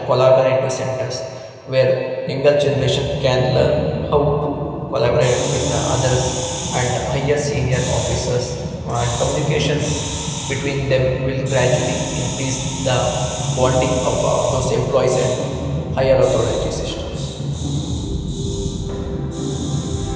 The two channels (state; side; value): identical; both; correlation 1.00